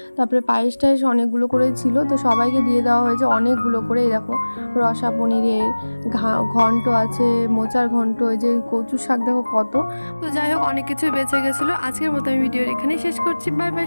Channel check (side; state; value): both; inverted; correlation -1.00